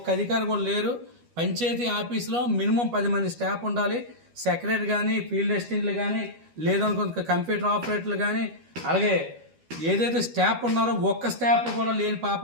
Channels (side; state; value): left; late; 12 ms